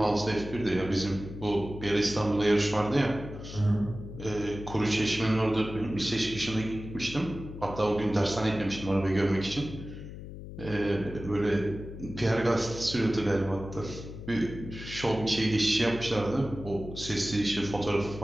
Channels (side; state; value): left; noise; hum, 11 dB below the sound